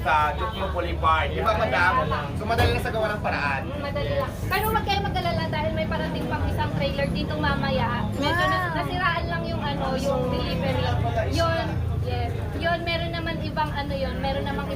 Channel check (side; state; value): both; identical; correlation 1.00